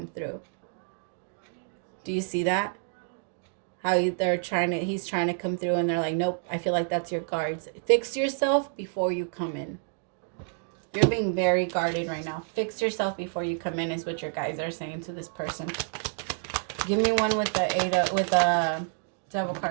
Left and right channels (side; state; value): left; silent; 59 dB below the other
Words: through. Do you see that? How he's trying to come through and they're like, nope, I feel like that's your guards. Fix yourself before you come in. You're being very guarded right now. Fix yourself before you come in is what your guys are saying to this person. Give me one with the devil